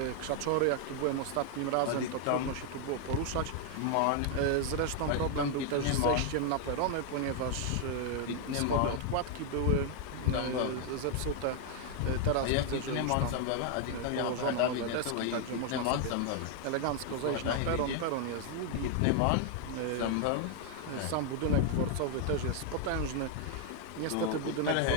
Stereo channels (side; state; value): both; different; correlation 0.00